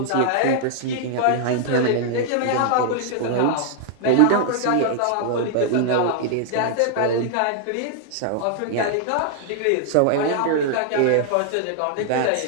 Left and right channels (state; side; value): different; both; correlation -0.01